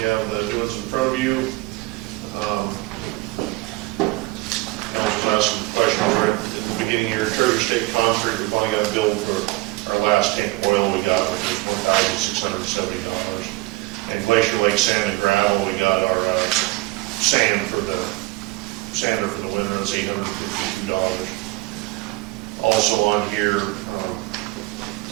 have the doings in front of you. I was asking questions right at the beginning of your Treasure State Concrete. We finally got a bill for our last tank of oil we got, which was $1,670. And Glacier Lake Sand and Gravel, we got our sander for the winter. That's $852. Also on here,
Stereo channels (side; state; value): left; quieter; 21.4 dB